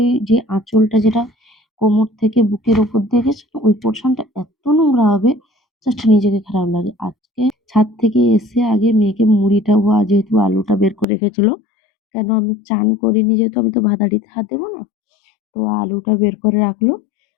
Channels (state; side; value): drops out; right; at 11.1 s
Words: যে আঁচলটা, যেটা কোমর থেকে বুকের উপর দিয়ে গেছে না, ওই পোরশনটা এত নোংরা হবে, জাস্ট নিজেকে খারাপ লাগে। আজকে ছাদ থেকে এসে আগে মেয়েকে মুড়িটা, ও যেহেতু আলুটা বের করে রেখেছিল, কেন আমি চান করিনি যেহেতু আমি তো ভাত হাঁড়িতে হাত দেবো না। তো আলুটা বের করে রাখলো।